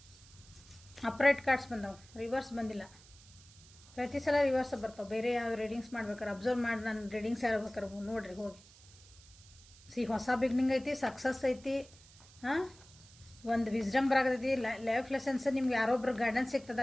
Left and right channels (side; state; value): right; noise; hiss, 23 dB below the sound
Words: ಅಪ್ರೈಟ್ ಕಾರ್ಡ್ಸ್ ಬಂದವು, ರಿವರ್ಸ್ ಬಂದಿಲ್ಲ. ಪ್ರತಿ ಸಲ ರಿವರ್ಸ್ ಬರ್ತಾವೆ. ಬೇರೆ ಯಾವ ರೀಡಿಂಗ್ಸ್ ಮಾಡ್ಬೇಕಾರೆ ಅಬ್ಸರ್ವ್ ಮಾಡಿ ನಾನು ರೀಡಿಂಗ್ಸ್ ಯಾರು ಬೇಕಾರೆ ನೋಡಿರಿ ಹೋಗಿ. ಹೊಸ ಬಿಗ್ನಿಂಗ್ ಐತಿ, ಸಕ್ಸಸ್ ಐತಿ, ಹಾಂ, ಒಂದು ವಿಸ್ಡಮ್ ಬರಾಗತೈತಿ, ಲೈಫ್ ಲೆಸನ್ಸ್, ನಿಮ್ಗೆ ಯಾರೊಬ್ರು ಗೈಡೆನ್ಸ್